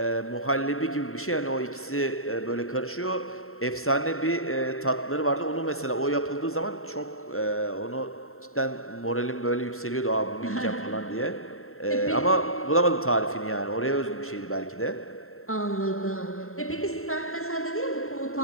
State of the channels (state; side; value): late; right; 0.62 ms